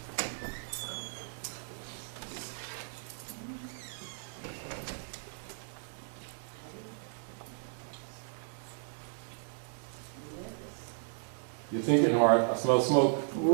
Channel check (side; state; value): left; silent; digital silence